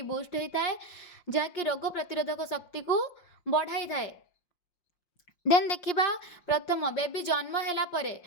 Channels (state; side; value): late; right; 5.6 ms